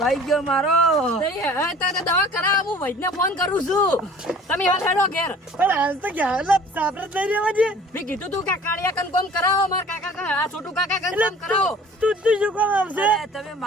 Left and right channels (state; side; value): normal; both; correlation 0.48